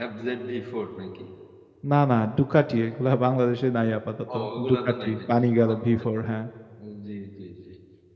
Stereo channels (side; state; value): both; identical; correlation 1.00